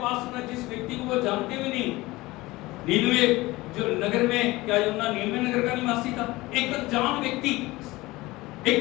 सुना, जिस व्यक्ति को वो जानते भी नहीं। नीनवे जो नगर में, क्या यूना नीनवे नगर का निवासी था, एक अनजान व्यक्ति,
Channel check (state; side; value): quieter; right; 20.0 dB